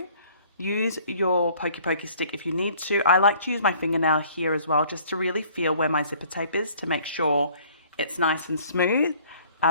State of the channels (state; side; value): inverted; both; correlation -0.55